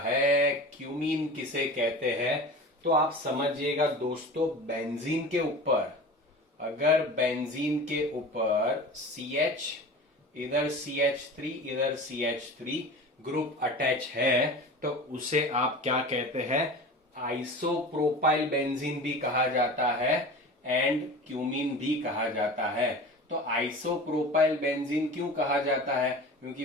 cumene किसे कहते हैं. तो आप समझिएगा दोस्तों, बेंजीन के ऊपर अगर बेंजीन के ऊपर CH इधर CH3 इधर CH3 ग्रुप अटैच है तो उसे आप क्या कहते हैं, आइसोप्रोपाइल बेंजीन भी कहा जाता है एंड क्यूमीन भी कहा जाता है. तो आइसोप्रोपाइल बेंजीन क्यों कहा जाता है?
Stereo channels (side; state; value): both; normal; correlation 0.35